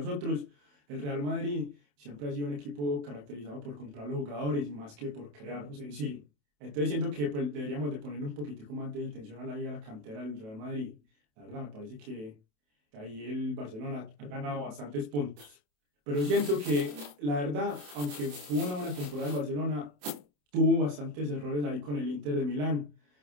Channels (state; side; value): late; left; 27 ms